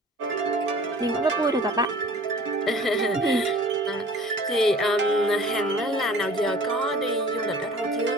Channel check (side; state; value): both; normal; correlation 0.47